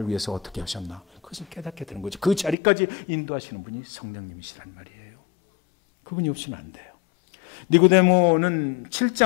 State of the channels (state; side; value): drops out; right; at 2.6 s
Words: 위해서 어떻게 하셨나 그것을 깨닫게 되는 거죠. 그 자리까지 인도하시는 분이 성령님이시란 말이에요. 그분이 없이는 안 돼요. 니고데모는